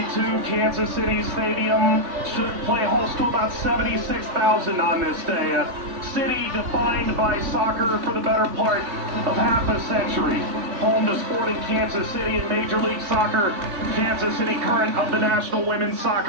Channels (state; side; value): late; left; 3.5 ms